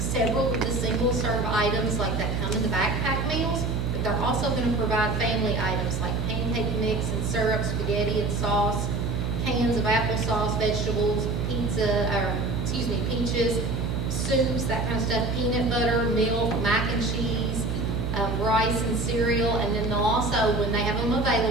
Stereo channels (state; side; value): noise; right; hum, 1 dB below the sound